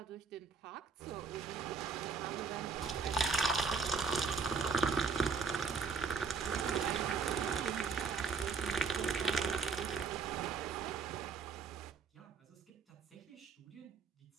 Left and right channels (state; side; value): quieter; left; 5.0 dB